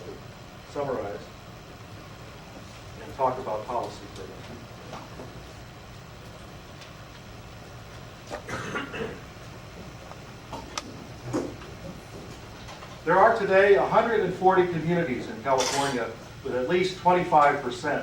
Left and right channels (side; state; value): both; identical; correlation 1.00